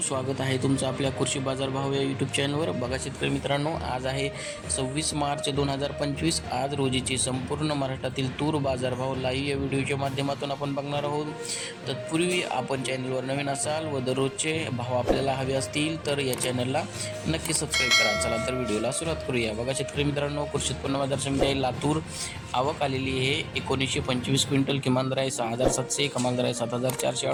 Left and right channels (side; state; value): both; identical; correlation 1.00